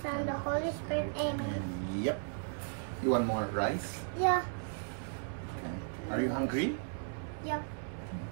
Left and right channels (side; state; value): left; silent; 54 dB below the other